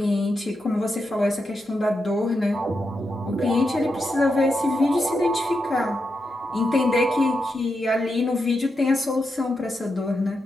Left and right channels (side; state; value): both; normal; correlation 0.86